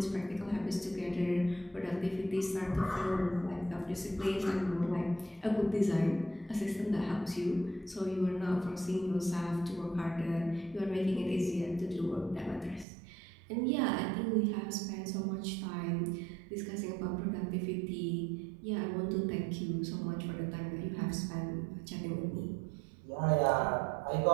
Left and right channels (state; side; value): drops out; left; at 12.9 s